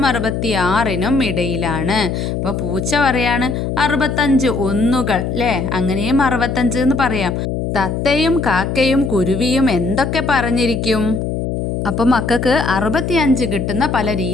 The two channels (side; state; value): left; noise; hum, 2 dB below the sound